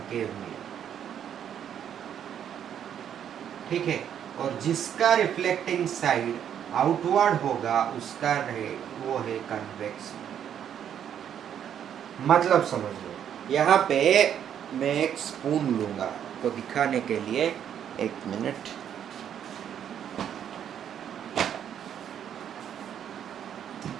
मिरर। ठीक है, और जिसका रिफ्लेक्टिंग साइड आउटवर्ड होगा उसका वो है कन्वेक्स। मतलब समझ लो, यहाँ पे मैं एक स्पून लूंगा तो दिखाने के लिए, एक मिनट।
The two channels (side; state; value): left; quieter; 9.3 dB